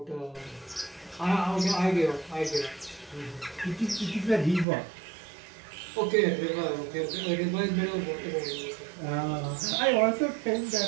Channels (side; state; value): left; drops out; at 4.7 s